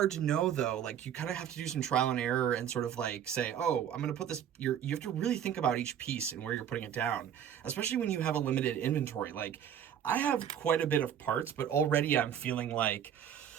to know though. Like you kind of have to do some trial and error and sort of like say, oh, I'm going to put this, you have to really think about each piece and where you're putting it down, especially when you have a limited inventory. Like I have quite a bit of parts, but already I'm feeling like,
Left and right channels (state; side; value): quieter; left; 9.3 dB